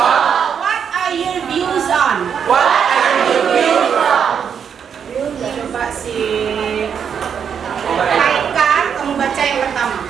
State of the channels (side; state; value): left; quieter; 7.5 dB